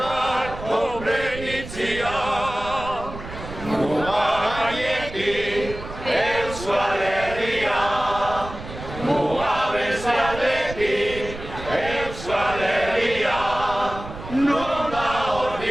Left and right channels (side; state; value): right; noise; rumble, 11 dB below the sound